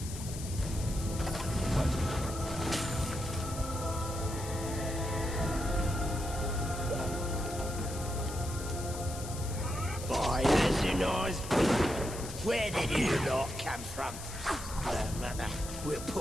Boy, that's a nice bloke. Where did you lot come from? No matter. We'll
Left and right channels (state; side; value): noise; left; hiss, 11 dB below the sound